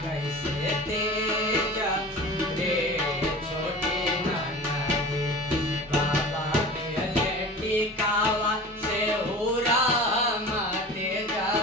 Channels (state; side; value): normal; both; correlation 0.37